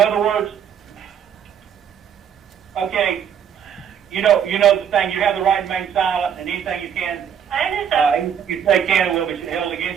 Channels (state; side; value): quieter; left; 8.4 dB